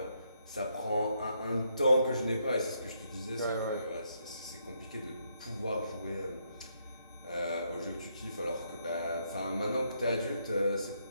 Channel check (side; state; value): both; inverted; correlation -0.76